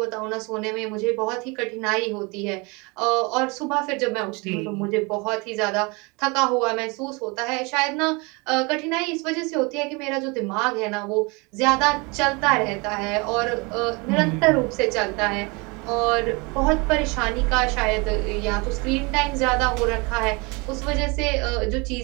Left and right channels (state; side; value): quieter; left; 28.1 dB